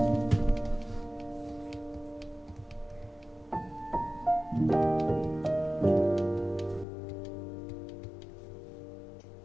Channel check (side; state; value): right; drops out; at 6.9 s